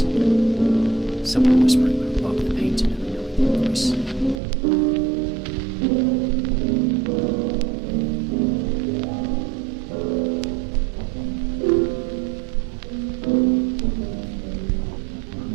someone whispering above the paint in a really deep voice.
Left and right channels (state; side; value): drops out; left; at 4.4 s